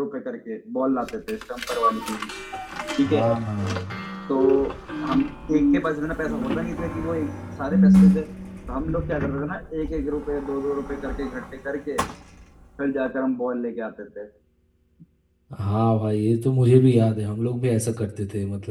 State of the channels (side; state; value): both; identical; correlation 1.00